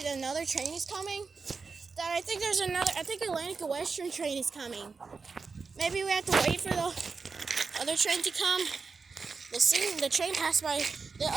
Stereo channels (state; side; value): quieter; left; 4.7 dB